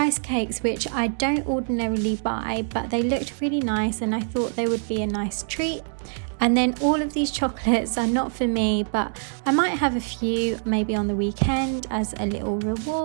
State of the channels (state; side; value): silent; left; 60 dB below the other